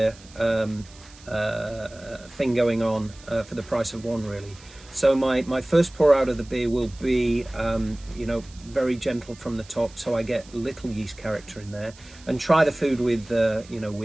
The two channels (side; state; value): right; noise; hiss, 23 dB below the sound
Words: thing going on for the price of 1, really. So my first pour out of the beer will be very gentle from the top, so I get little yeast character in there, and try the food with